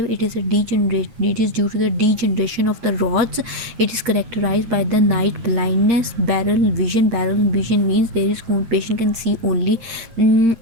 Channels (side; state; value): left; late; 8.7 ms